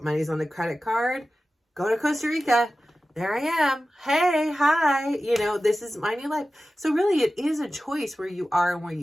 money's on the credit card, go to Costa Rica. There I am. Hey, hi. You know, this is my new life. So really, it is a choice where you are and where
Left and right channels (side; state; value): both; normal; correlation 0.95